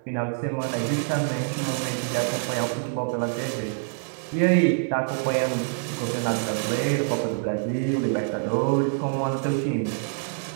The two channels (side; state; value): left; silent; digital silence